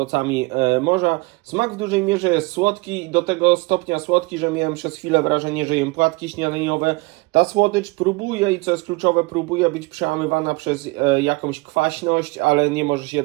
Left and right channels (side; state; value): left; quieter; 24.9 dB